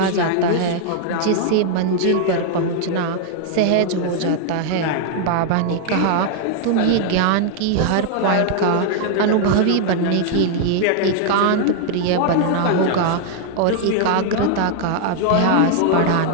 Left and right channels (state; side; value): different; both; correlation 0.00